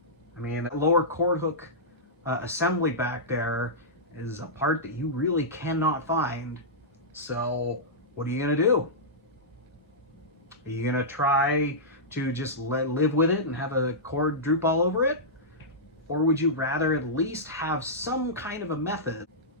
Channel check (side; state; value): both; normal; correlation -0.14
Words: I mean, that lower cord hook assembly back there is a part that you really cannot find. So what are you gonna do? Are you gonna try to just live with it and have a cord droop all over it? Or would you rather at least have some kind of a method